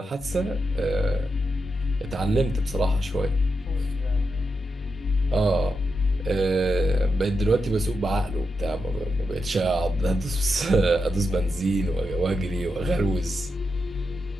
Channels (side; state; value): both; normal; correlation 0.86